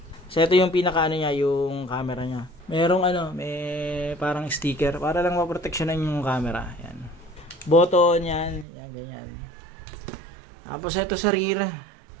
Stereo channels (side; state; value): left; drops out; at 8.7 s